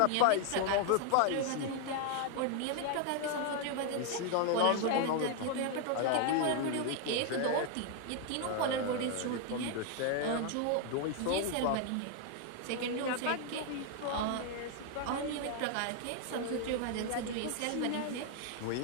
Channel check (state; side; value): different; both; correlation 0.00